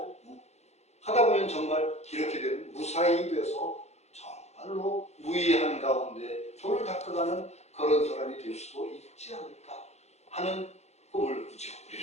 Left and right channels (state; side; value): late; right; 0.32 ms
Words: 하다 보면 정말 이렇게 되면 무사히 돼서 정말로 무의한 가운데 도를 닦아가는 그런 사람이 될 수도 있지 않을까 하는 꿈을 꾸죠.